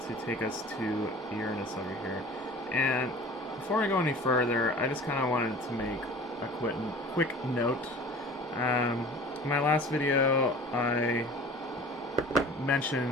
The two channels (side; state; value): both; normal; correlation 0.42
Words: to take us to Uranus over here. And before I go any further, I just kind of wanted to make a quick note. In my last video, I